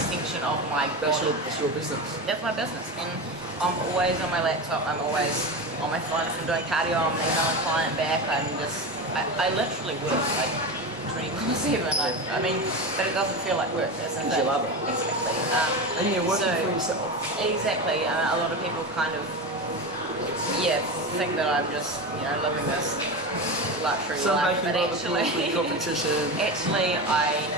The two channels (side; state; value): both; normal; correlation 0.22